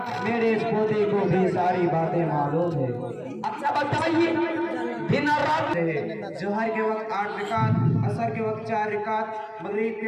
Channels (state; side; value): identical; both; correlation 1.00